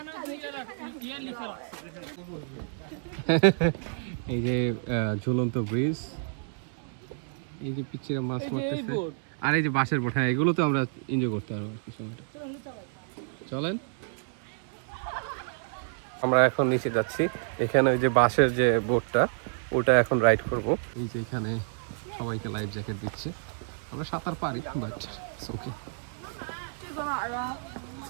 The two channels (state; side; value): silent; left; digital silence